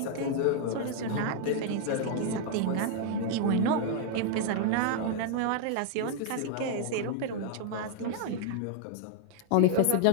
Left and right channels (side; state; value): both; different; correlation 0.00